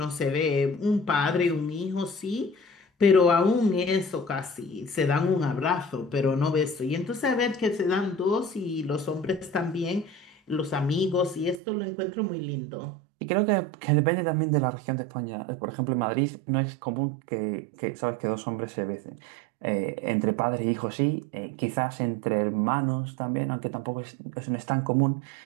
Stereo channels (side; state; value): left; drops out; at 11.6 s